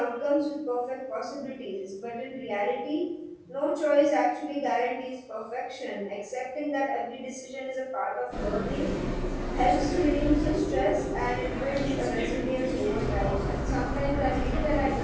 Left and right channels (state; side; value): identical; both; correlation 1.00